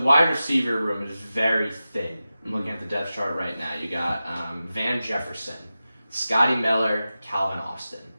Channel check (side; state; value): both; inverted; correlation -0.94